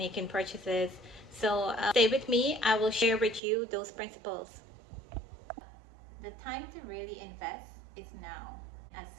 purchases. So stay with me. I will share with you those principles. The time to really invest is now, as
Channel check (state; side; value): drops out; left; at 3.4 s